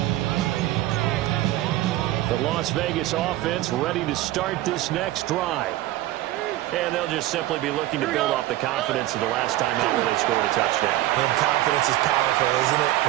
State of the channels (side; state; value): left; quieter; 15.7 dB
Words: The Las Vegas offense ready to start this next drive. And they'll just simply be looking to build off the confidence of the last time out where they scored a touchdown. And confidence is powerful, isn't it?